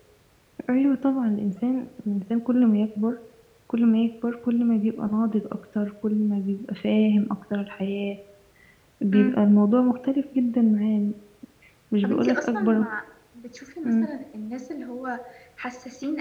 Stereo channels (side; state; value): both; identical; correlation 1.00